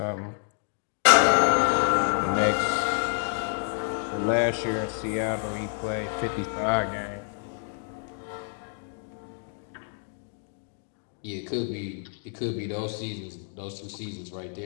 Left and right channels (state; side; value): silent; right; 57 dB below the other